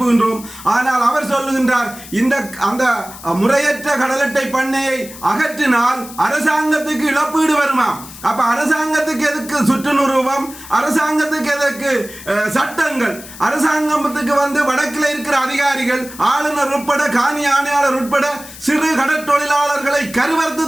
ஆனால் அவர் சொல்லுகின்றார், அந்த முறையற்ற கடல் அட்டை பண்ணையை அகற்றினால் அரசாங்கத்துக்கு இழப்பீடு வருமா? அப்ப அரசாங்கத்துக்கு எதுக்கு சுற்று நிரூபம்? அரசாங்கத்துக்கு எதற்கு சட்டங்கள்? அரசாங்கத்துக்கு வடக்கில் இருக்கிற அதிகாரிகள், ஆளுநர் உட்பட காணி ஆணையாளர் உட்பட சிறு கடற்தொழிலாளர்களை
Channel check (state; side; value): noise; left; hiss, 16 dB below the sound